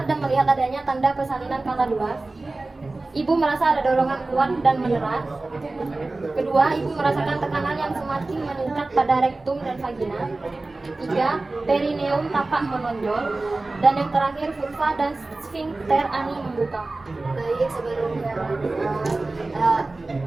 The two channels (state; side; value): quieter; left; 3.2 dB